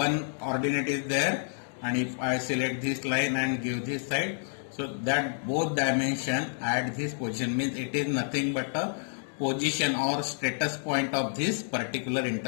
ordinate is there, and if I select this line and give this side, so that both dimension at this position, means it is nothing but a position or status point of this particular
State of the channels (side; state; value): right; silent; digital silence